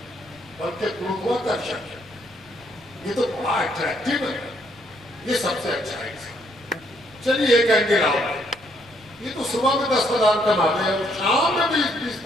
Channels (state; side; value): noise; left; rumble, 25 dB below the sound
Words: بلکہ گروتواکرشن ہے، یہ تو بڑا اٹریکٹیو ہے، یہ سب سے اچھا انسان۔ چلیے ایک اینگل آؤ، یہ تو صبح میں 10,000 کما لے اور شام میں بھی